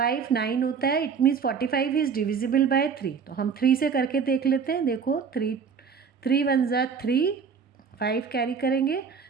9 होता है। It means 45 is divisible by 3। तो हम 3 से करके देख लेते हैं। देखो 3 1 ज़ा 3, 5 कैरी करेंगे,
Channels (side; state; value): left; quieter; 6.1 dB